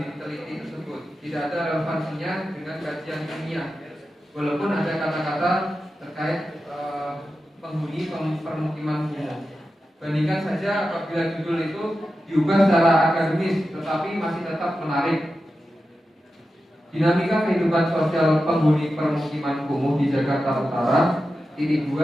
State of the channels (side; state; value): both; normal; correlation 0.91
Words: diteliti tersebut. Tidak ada relevansinya dengan kajian ilmiah. Walaupun ada kata-kata terkait penghuni permukiman kumuh. Bandingkan saja apabila judul itu diubah secara akademis, tetapi masih tetap menarik. Dinamika kehidupan sosial penghuni permukiman kumuh di Jakarta Utara, titik